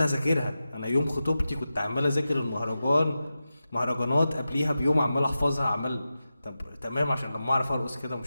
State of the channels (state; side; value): inverted; both; correlation -0.92